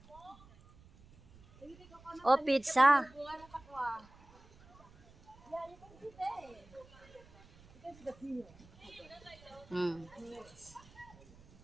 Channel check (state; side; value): noise; right; rumble, 24 dB below the sound